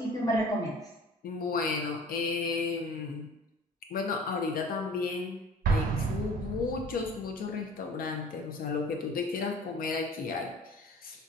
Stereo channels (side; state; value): both; normal; correlation 0.46